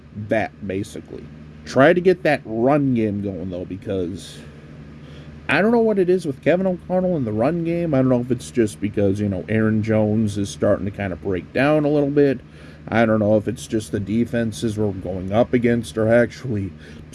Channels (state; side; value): identical; both; correlation 1.00